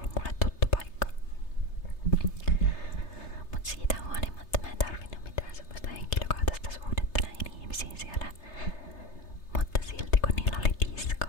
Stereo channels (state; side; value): late; right; 3.3 ms